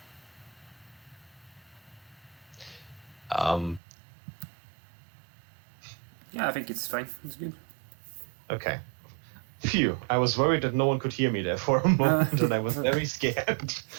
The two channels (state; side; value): drops out; left; at 3.8 s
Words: Yeah, I think it's fine. It's good. Okay. Phew, I was worried that no one could hear me there for a moment, and I was very scared.